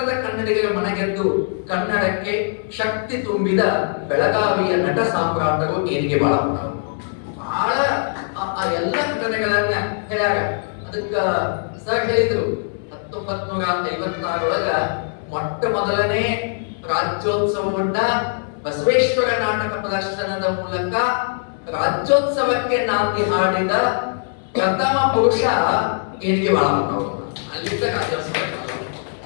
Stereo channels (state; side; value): silent; right; 65 dB below the other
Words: ಕನ್ನಡಿಗರ ಮನಗೆದ್ದು ಕನ್ನಡಕ್ಕೆ ಶಕ್ತಿ ತುಂಬಿದ ಬೆಳಗಾವಿಯ ನಟ ಸಾಮ್ರಾಟರು ಏನಿಗೆ ಬಾಳಪ್ಪನವರು. ಬಹಳ ಆ ಎಲ್ಲ ಘಟನೆಗಳನ್ನ ಹೇಳ್ಯಾರ. ಅದಕ್ಕ ಸರ್ ಹೇಳಿದ್ರು 1956 ಮೊಟ್ಟ ಮೊದಲನೇ ರಾಜ್ಯೋತ್ಸವವನ್ನ ಬಸವೇಶ್ವರ ನಾಟಕ ಪ್ರದರ್ಶನದ ಮೂಲಕ ರಾಜ್ಯೋತ್ಸವಕ್ಕೆ ನಾಂದಿ ಹಾಡಿದ ಪ್ರಥಮ ಪುರುಷ ಏನಿಗೆ ಬಾಳಪ್ಪನವರು. ಅಲ್ಲಿಂದ ರಾಜ್ಯೋತ್ಸವ.